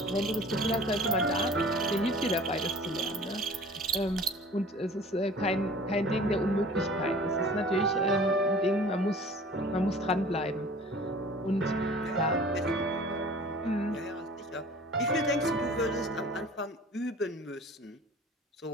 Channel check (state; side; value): normal; both; correlation 0.45